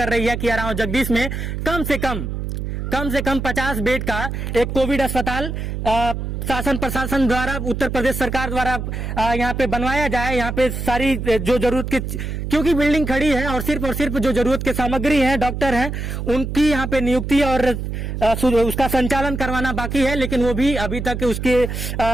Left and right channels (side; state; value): right; noise; hum, 4 dB below the sound